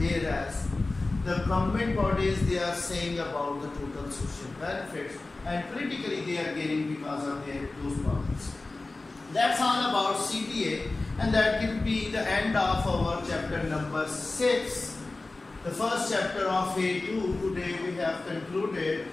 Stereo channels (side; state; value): right; quieter; 3.3 dB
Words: the government bodies, they are saying about the total social benefits, and politically they are gaining because of those problems. That's all about CBA, and that will be the end of our chapter number 6. The first chapter of A2 today we have concluded,